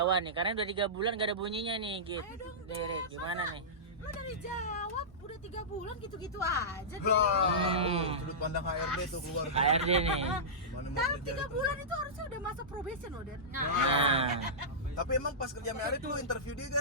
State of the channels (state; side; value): normal; both; correlation -0.16